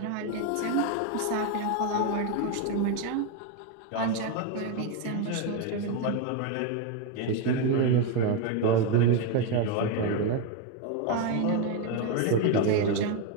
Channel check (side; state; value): both; different; correlation 0.02